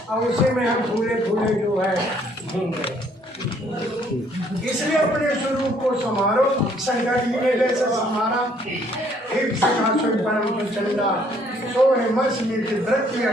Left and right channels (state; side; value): normal; both; correlation 0.63